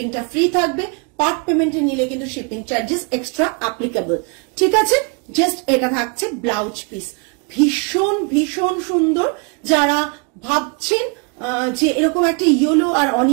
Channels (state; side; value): quieter; left; 34.9 dB